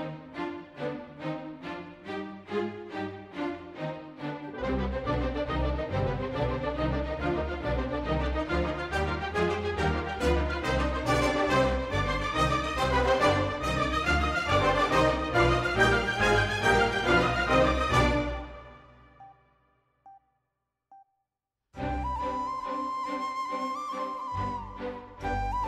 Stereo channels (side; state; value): both; identical; correlation 1.00